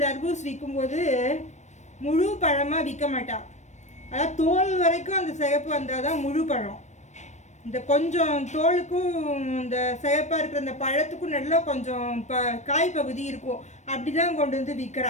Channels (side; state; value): right; late; 0.34 ms